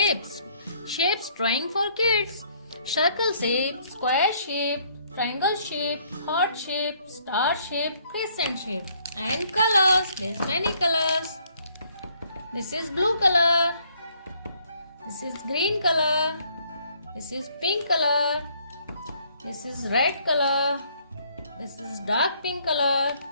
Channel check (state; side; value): inverted; both; correlation -0.65